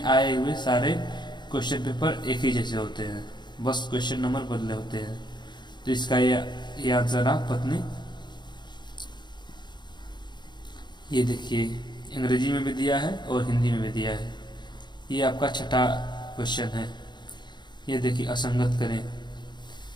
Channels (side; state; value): right; late; 0.21 ms